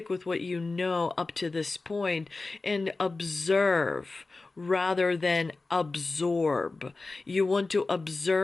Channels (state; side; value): quieter; right; 3.5 dB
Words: with what you know up to this point and observe rather than absorb. You want to